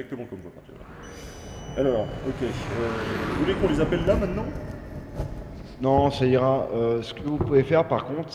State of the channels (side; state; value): both; identical; correlation 1.00